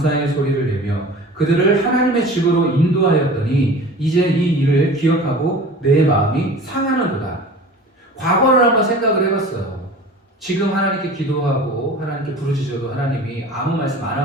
소리를 내며 그들을 하나님의 집으로 인도하였더니 이제 이 일을 기억하고 내 마음이 상하는구나. 과거를 한번 생각을 해봤어요. 지금 하나님께 기도하고 하나님께 부르짖어도 하나님이 아무 말씀 안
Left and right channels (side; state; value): both; normal; correlation 0.39